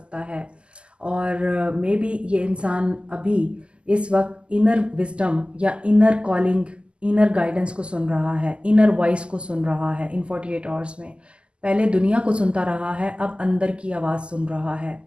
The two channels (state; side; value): late; left; 0.052 ms